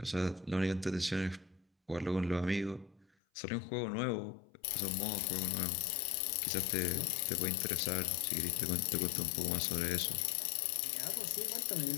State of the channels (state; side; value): drops out; right; at 3.1 s